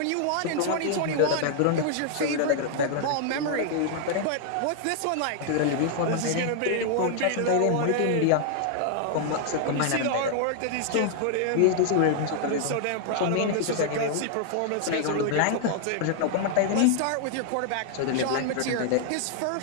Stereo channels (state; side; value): different; both; correlation 0.00